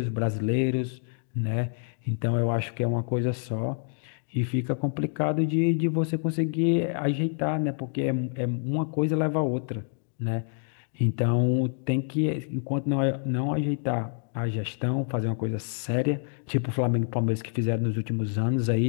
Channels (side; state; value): right; silent; 60 dB below the other